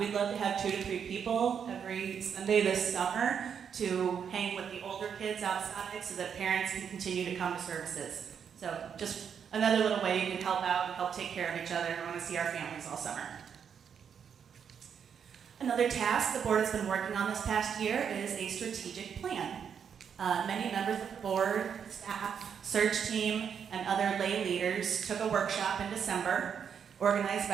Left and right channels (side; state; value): left; quieter; 7.5 dB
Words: love to have 2 to 3 people every Sunday this summer to hang with the older kids outside so that parents can continue to come to services. So just another little way you can help out and help take care of each other. We want to see our families all summer. Another task the board has been working on this past year is a strategic plan. Many members of the board, staff, search team, and other lay leaders took a workshop in December organized